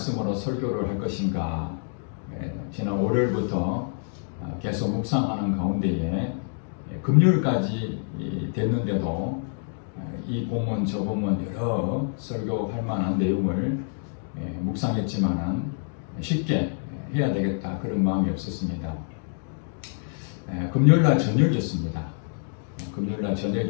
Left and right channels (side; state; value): right; silent; digital silence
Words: 설교를 할 것인가, 지난 월요일부터 계속 묵상하는 가운데에 금요일까지 됐는데도 이 본문 저 본문 여러 설교할 만한 내용을 묵상했지만은 쉽게 해야 되겠다 그런 마음이 없었습니다. 금요일날 저녁이었습니다. 금요일날